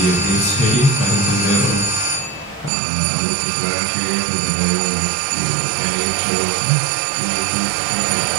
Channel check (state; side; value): drops out; left; at 2.7 s